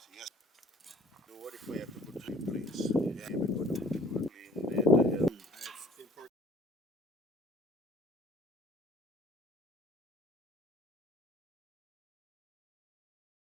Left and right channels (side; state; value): both; normal; correlation 0.54